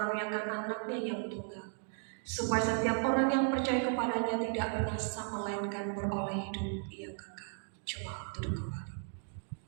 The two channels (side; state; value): left; silent; 54 dB below the other